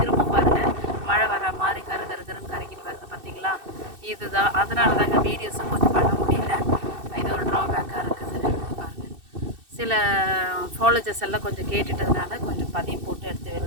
பாருங்கள் மழை வர மாதிரி கருன்னு கரைக்கிட்டு வருது பார்த்தீங்களா. இதுதான் அதனால தான் எங்கள் வீடியோஸும் கொஞ்சம் பண்ண முடியல. இது ஒரு ட்ராபேக்காக இருக்குது பாருங்கள். சில ஃபாலோஜர்ஸ் எல்லாம் கொஞ்சம் கேட்டுட்டதுனால கொஞ்சம் பதியம் போட்டு எடுத்து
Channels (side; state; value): left; late; 2.6 ms